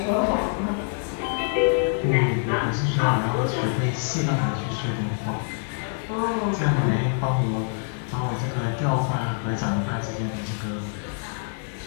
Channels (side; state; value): right; silent; 62 dB below the other